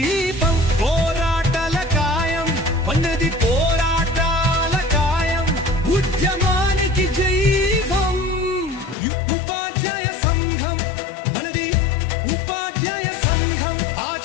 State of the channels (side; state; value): right; drops out; at 9.0 s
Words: పోరాటాల కాయం ఉన్నది పోరాటాల కాయం ఉద్యమానికి జైవం ఉపాధ్యాయ సంఘం మనది ఉపాధ్యాయ సంఘం